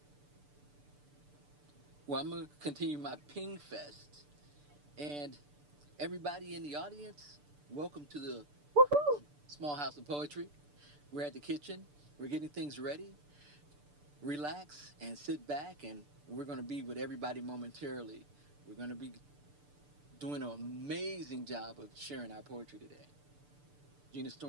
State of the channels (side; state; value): left; late; 6.8 ms